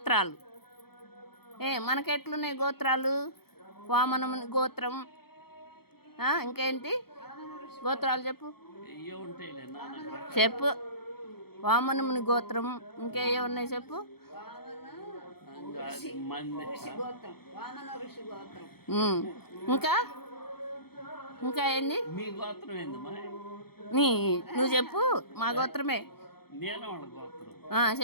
మనకెట్లున్నాయి గోత్రాలు? వామనముని గోత్రం. ఇంకేంటి గోత్రాలు చెప్పు. వామనముని గోత్రం. ఇంకేయో ఉన్నాయి చెప్పు. ఇంకా ఏంది? నువ్వు చెప్పు. మా గోత్రమే.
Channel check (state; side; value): late; right; 0.96 ms